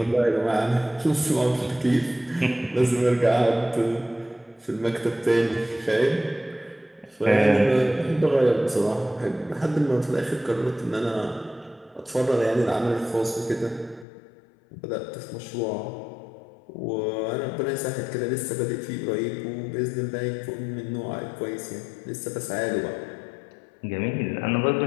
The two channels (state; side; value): drops out; right; at 14.1 s